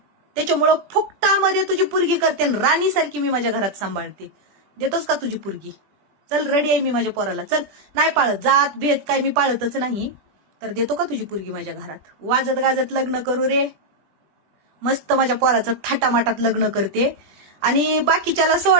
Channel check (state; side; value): late; left; 20 ms